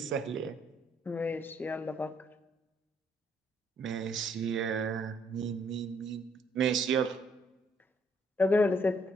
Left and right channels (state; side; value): normal; both; correlation 0.68